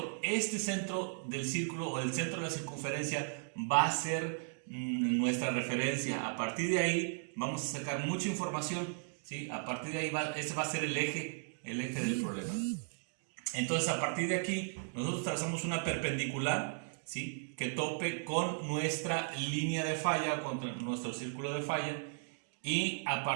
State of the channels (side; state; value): left; silent; digital silence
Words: Este centro del círculo, o el centro de la circunferencia, va a ser nuestra referencia. A partir de ahí vamos a sacar mucha información, ¿sí? A partir de ahí ese va a ser el eje del problema. Entonces, a partir de aquí nosotros trazamos una perpendicular, ¿sí? Que tope con nuestra línea de falla, con nuestro círculo de falla, y a